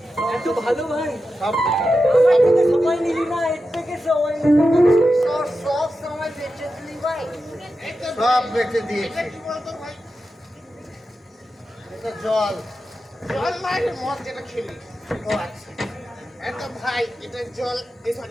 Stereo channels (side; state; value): both; normal; correlation 0.90